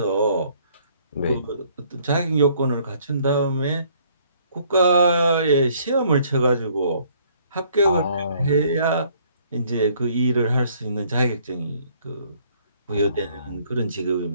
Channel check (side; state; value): both; inverted; correlation -0.63